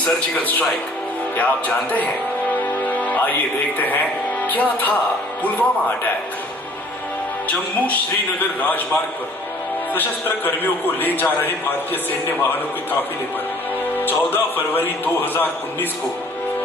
स्ट्राइक, क्या आप जानते हैं? आइए देखते हैं क्या था पुलवामा अटैक। जम्मू श्रीनगर राजमार्ग पर सशस्त्र कर्मियों को ले जा रहे भारतीय सैन्य वाहनों के काफिले पर 14 फरवरी 2019 को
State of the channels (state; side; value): normal; both; correlation 0.54